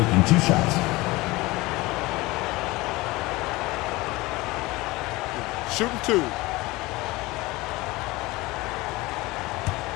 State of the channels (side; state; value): right; quieter; 21.1 dB